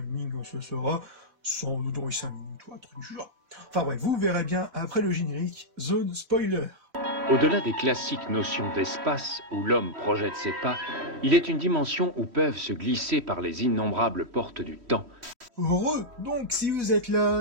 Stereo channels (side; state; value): left; late; 3.1 ms